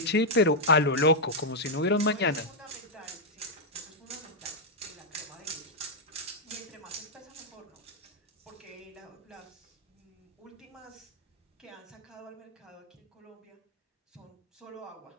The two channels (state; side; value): normal; both; correlation -0.04